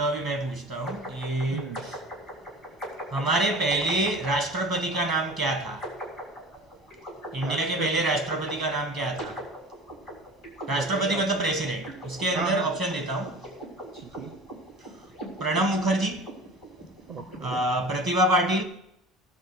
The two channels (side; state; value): both; normal; correlation 0.39